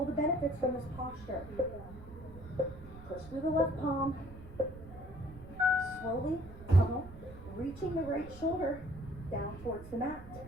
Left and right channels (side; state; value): right; noise; rumble, 15 dB below the sound